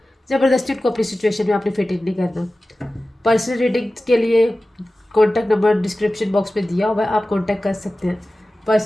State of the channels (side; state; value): both; normal; correlation 0.96